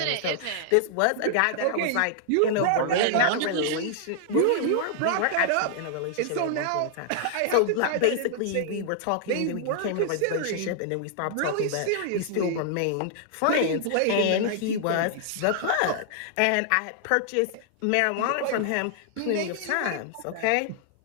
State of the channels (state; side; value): different; both; correlation -0.01